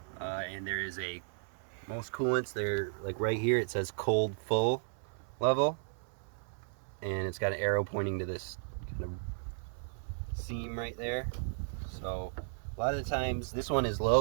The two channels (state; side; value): silent; left; 55 dB below the other